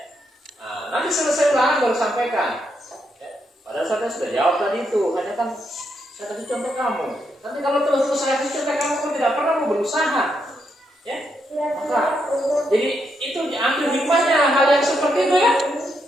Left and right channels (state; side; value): normal; both; correlation 0.80